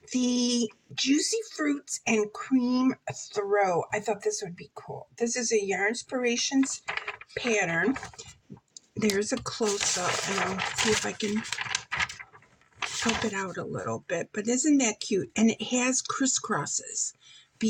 The Juicy Fruits and Cream Throw. I thought this would be cool. This is a Yarnspirations pattern. There's a close-up, and I'll see if I can help it out a little bit. But isn't that cute? And it has crisscrosses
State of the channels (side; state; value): both; identical; correlation 1.00